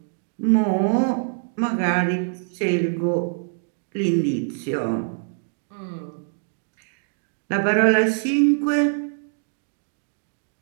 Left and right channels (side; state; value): left; silent; digital silence